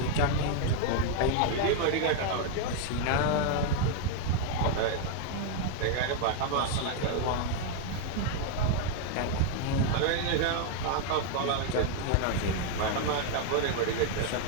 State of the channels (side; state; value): both; different; correlation 0.00